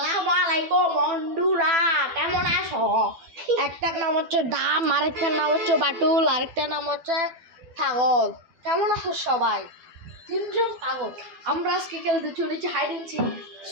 আলাইকুম বন্ধুরা, কেমন আছো? একটার নাম হচ্ছে ডাম, আরেকটার নাম হচ্ছে বাটুল, আরেকটার নাম হচ্ছে ছাগল। কেমন আছো সবাই? তিনজন পাগল। আমরা আজকে খেলতে চলেছি হাইড এন্ড সিক।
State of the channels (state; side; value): late; left; 12 ms